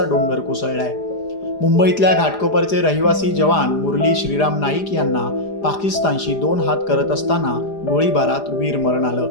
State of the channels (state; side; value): late; right; 4.9 ms